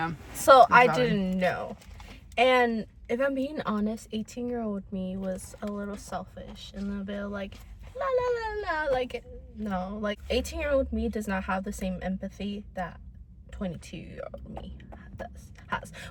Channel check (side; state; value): both; identical; correlation 1.00